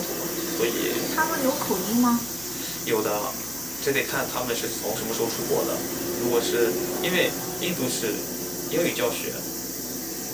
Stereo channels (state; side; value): noise; left; hum, 19 dB below the sound